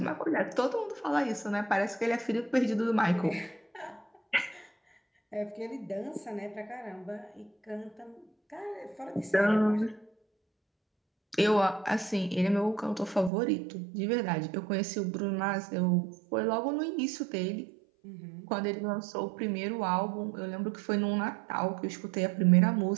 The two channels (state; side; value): drops out; left; at 13.3 s